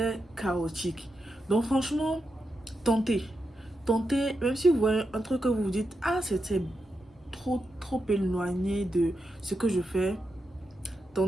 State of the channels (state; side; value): normal; both; correlation 0.86